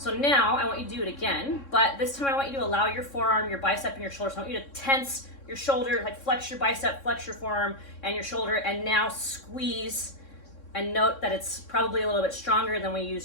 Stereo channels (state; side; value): late; right; 3.6 ms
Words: now I want you to do it again, but this time I want you to allow your forearm, your bicep, and your shoulder. So I want you to tense your shoulder, like flex your bicep, flex your forearm and your shoulder, and now squeeze. And note that it's probably a little bit stronger than we